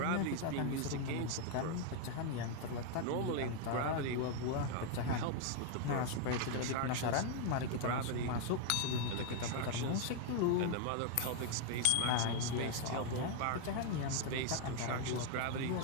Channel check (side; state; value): both; different; correlation 0.00